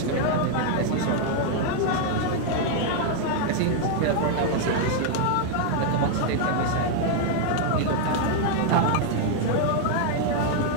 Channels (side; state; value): both; different; correlation 0.00